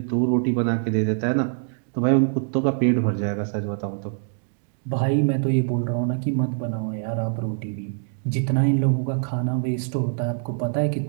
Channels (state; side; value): silent; left; digital silence